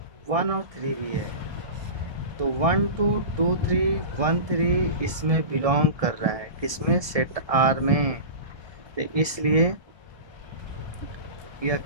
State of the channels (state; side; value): late; left; 1.7 ms